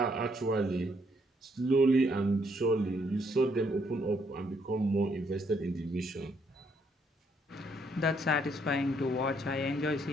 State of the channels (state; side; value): normal; both; correlation 0.71